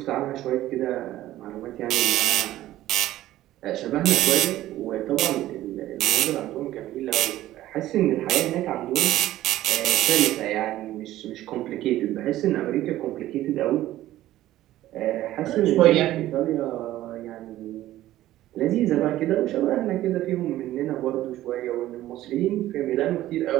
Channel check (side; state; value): left; quieter; 14.6 dB